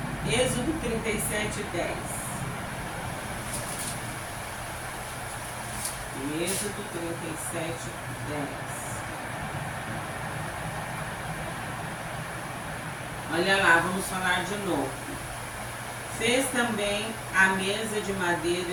Êxodo 37, 10. Êxodo 37, 10. Olha lá, vamos falar de novo. Fez também a mesa de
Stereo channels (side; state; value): both; identical; correlation 1.00